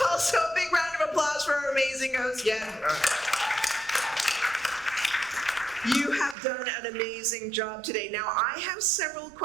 also a big round of applause for our amazing host. Yeah. You have done an amazing job today. Now, I have several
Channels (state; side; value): drops out; left; at 6.4 s